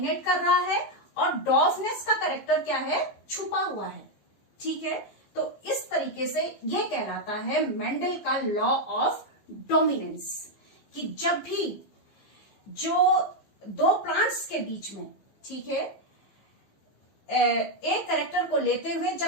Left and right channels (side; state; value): right; late; 15 ms